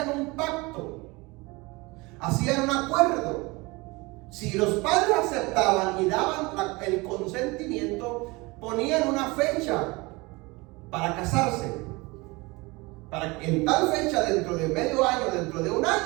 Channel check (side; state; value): left; quieter; 24.4 dB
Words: un pacto, hacían un acuerdo. Si los padres aceptaban y daban el consentimiento, ponían una fecha para casarse, para que en tal fecha, dentro de medio año, dentro de un